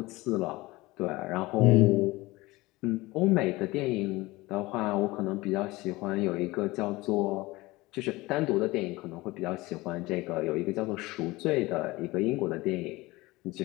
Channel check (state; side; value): quieter; right; 20.8 dB